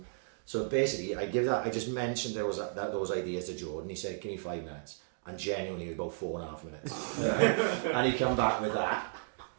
So basically, I just mentioned those ideas to Jordan. He said, "Give me 5 minutes," and genuinely about 4.5 minutes. And he come back with that.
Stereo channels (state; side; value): silent; left; digital silence